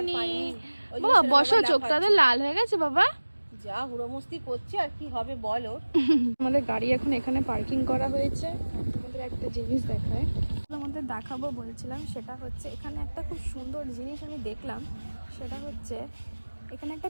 বাবা বসো, চোখটাতে লাল হয়ে গেছে বাবা। যা হুড়োমস্তি করছে আর কি হবে বলো। আমাদের গাড়ি এখন এখানে পার্কিং করা হয়েছে। তোমাদের একটা জিনিস দেখায়, তোমাদের দেখাবো বলছিলাম, সেটা হচ্ছে এখানে একটা খুব সুন্দর জিনিস আমি দেখলাম। সেটা হচ্ছে এখানে একটা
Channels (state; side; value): inverted; both; correlation -1.00